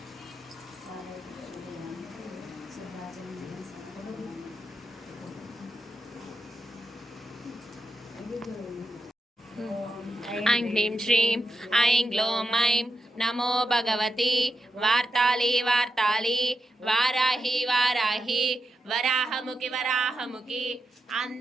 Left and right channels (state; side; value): normal; both; correlation 0.86